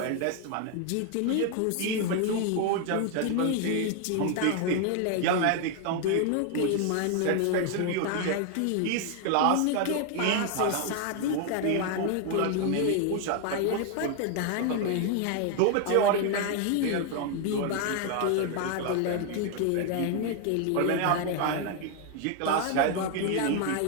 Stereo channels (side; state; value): both; different; correlation 0.00